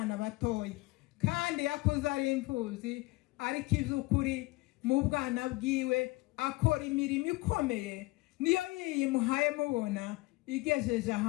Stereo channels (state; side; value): quieter; right; 21.9 dB